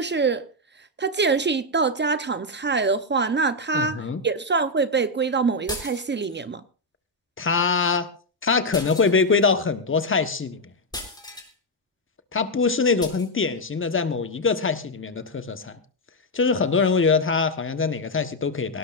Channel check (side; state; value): both; normal; correlation 0.01